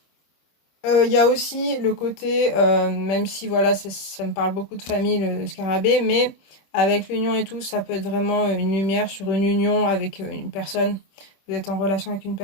Il y a aussi le côté, même si voilà, ça me parle beaucoup de famille, le scarabée, mais avec l'union et tout, ça peut être vraiment une lumière sur une union avec une personne. Vous êtes en relation avec une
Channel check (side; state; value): right; late; 26 ms